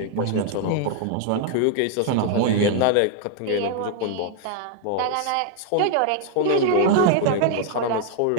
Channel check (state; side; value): different; both; correlation 0.00